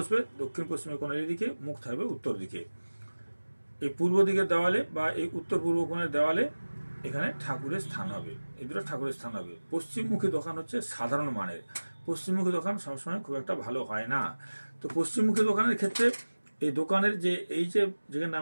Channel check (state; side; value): inverted; both; correlation -1.00